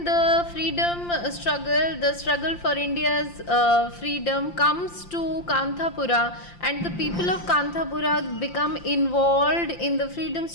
the freedom struggle, the struggle for India's freedom comes to Kanthapura and the people of Kanthapura become involved in the freedom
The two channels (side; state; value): right; late; 5.8 ms